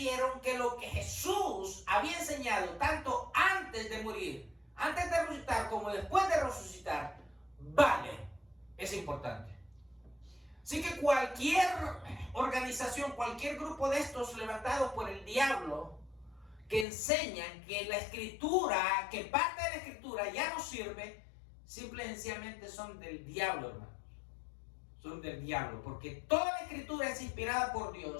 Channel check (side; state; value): right; drops out; at 16.9 s